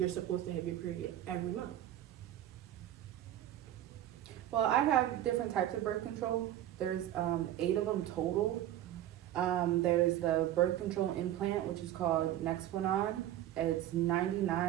supposed to have your period every month. Well, I have different types of birth control. There's 8 of them total. There's the birth control implant, which is called Nexplanon. It's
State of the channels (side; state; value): left; quieter; 12.7 dB